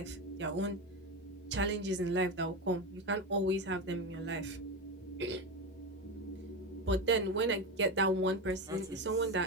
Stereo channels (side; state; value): both; normal; correlation 0.18